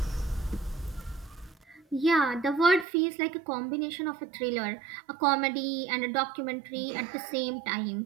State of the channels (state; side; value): drops out; left; at 2.9 s